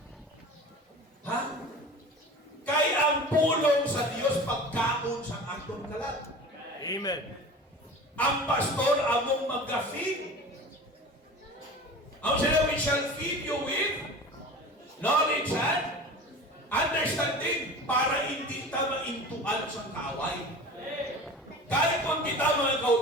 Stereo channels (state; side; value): normal; both; correlation 0.36